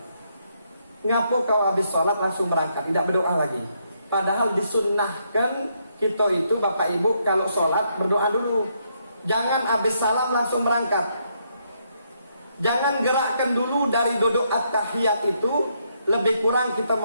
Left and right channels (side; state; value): both; inverted; correlation -0.75